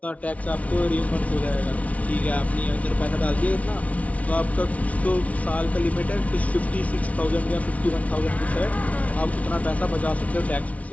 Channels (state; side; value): late; right; 0.067 ms